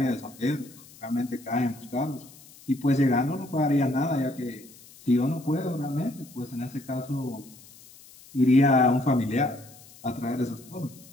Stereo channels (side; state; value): left; noise; hiss, 22 dB below the sound